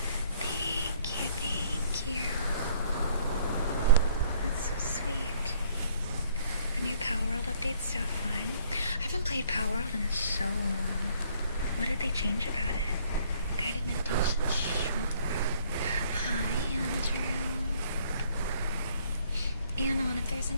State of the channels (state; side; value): inverted; both; correlation -0.61